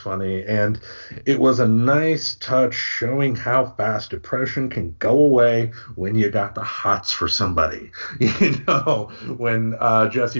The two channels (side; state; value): both; inverted; correlation -1.00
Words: and it was a nice touch showing how fast depression can go away when you got the hots for somebody. When